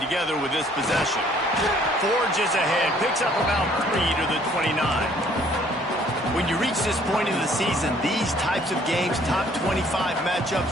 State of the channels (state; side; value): normal; both; correlation 0.60